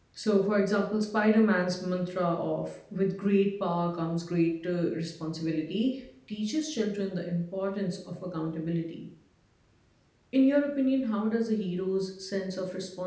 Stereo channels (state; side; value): identical; both; correlation 1.00